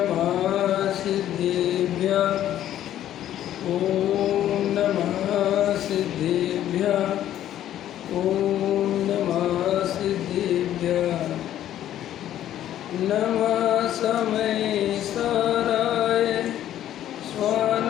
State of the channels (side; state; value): right; quieter; 11.9 dB